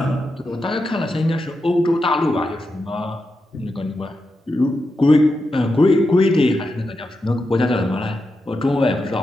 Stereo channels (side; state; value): both; normal; correlation 0.87